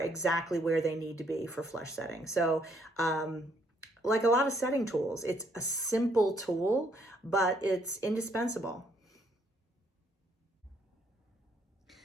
where they need to be for flush setting. So, like a lot of setting tools, it's a simple tool, but it's indispensable.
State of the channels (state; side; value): normal; both; correlation 0.69